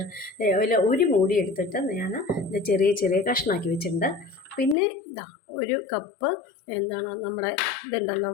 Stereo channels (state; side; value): drops out; right; at 4.8 s